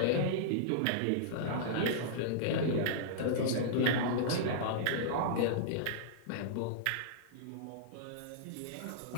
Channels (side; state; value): both; different; correlation -0.02